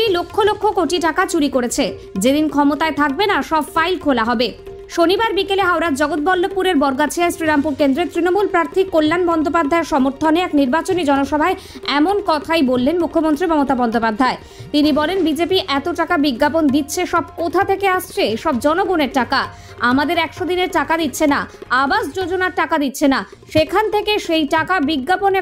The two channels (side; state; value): both; identical; correlation 1.00